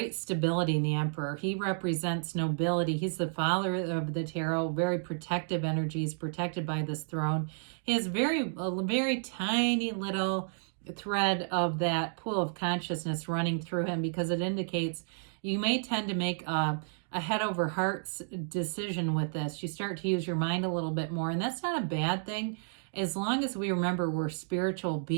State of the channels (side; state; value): left; silent; digital silence